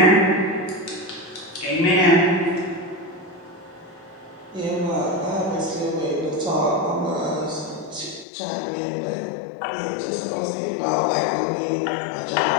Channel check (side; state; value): right; drops out; at 8.2 s